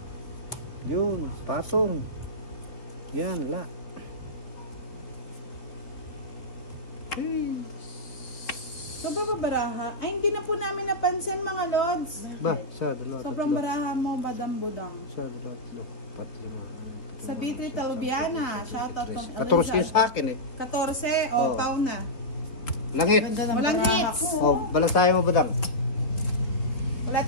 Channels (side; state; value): right; late; 3.7 ms